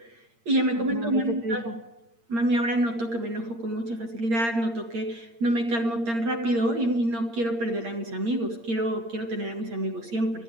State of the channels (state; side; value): late; left; 8.7 ms